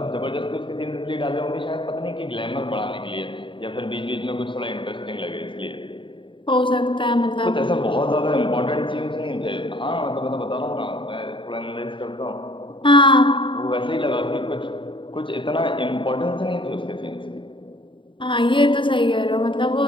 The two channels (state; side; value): late; right; 0.24 ms